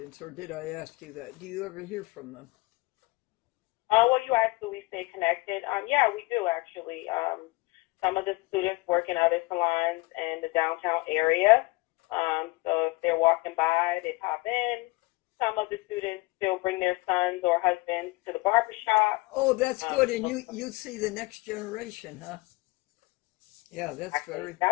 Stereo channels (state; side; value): quieter; right; 22.5 dB